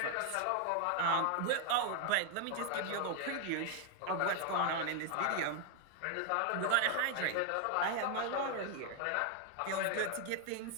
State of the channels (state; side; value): different; both; correlation 0.00